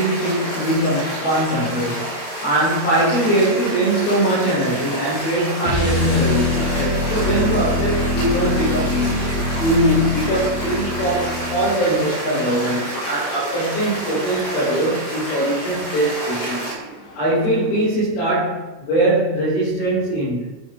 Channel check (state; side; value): late; right; 31 ms